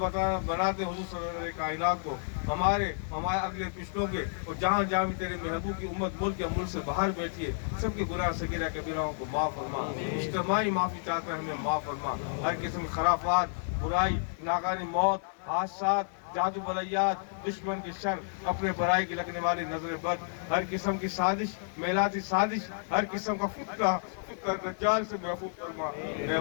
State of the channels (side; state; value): right; silent; digital silence